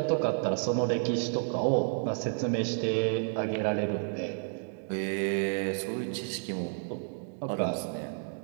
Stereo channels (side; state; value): left; silent; 57 dB below the other